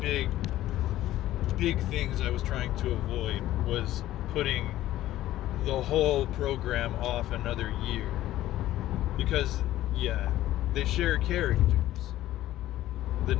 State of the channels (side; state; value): right; quieter; 14.4 dB